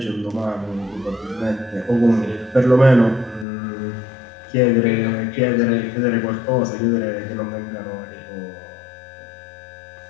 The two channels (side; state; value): right; drops out; at 3.5 s